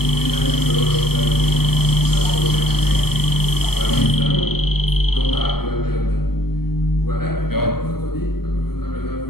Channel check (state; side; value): late; right; 0.96 ms